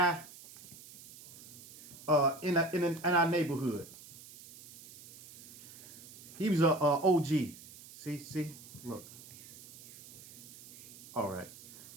in our neighborhood. He was a OG. See, look. All right.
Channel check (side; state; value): right; noise; hiss, 18 dB below the sound